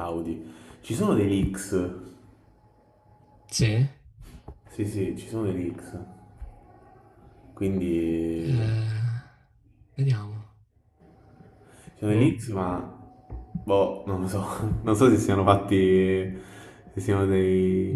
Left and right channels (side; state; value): both; identical; correlation 1.00